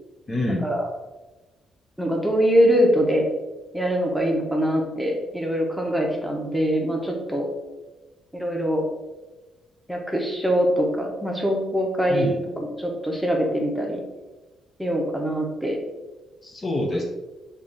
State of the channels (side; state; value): both; normal; correlation 0.81